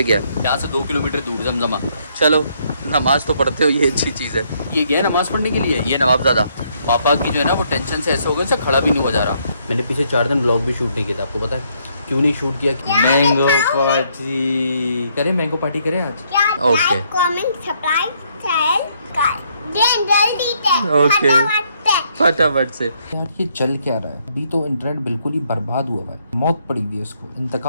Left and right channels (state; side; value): inverted; both; correlation -0.71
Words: गया? यहाँ से 2 किलोमीटर दूर जमजमा। चलो नमाज़ तो पढ़ते हो, ये अच्छी चीज़ है। ये गया नमाज़ पढ़ने के लिए, ये नवाबज़ादा। पापा की जो है ना वो टेंशन से ऐसे हो गए, से खड़ा भी नहीं हो जा रहा। मैंने पीछे 4 दिन ब्लॉग भी शूट नहीं किया था, आपको पता है क्यों नहीं शूट किया? मैंगो पार्टी करें, मैंगो पार्टी करें आज। ओके ओके फटाफट से। यार ये चल क्या रहा है? अभी तो इंटरनेट बिल्कुल ही बर्बाद हुआ है, मौत पड़ी हुई है इसको,